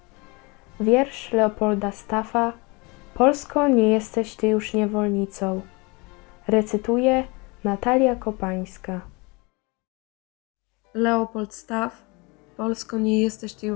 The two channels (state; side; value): quieter; right; 27.3 dB